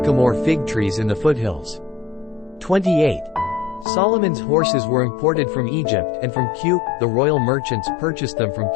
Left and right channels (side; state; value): right; drops out; at 3.9 s